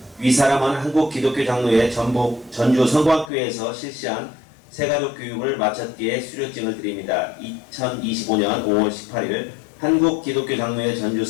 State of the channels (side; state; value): right; drops out; at 3.3 s